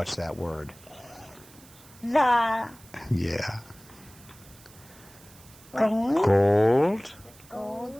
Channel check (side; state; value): right; noise; hiss, 23 dB below the sound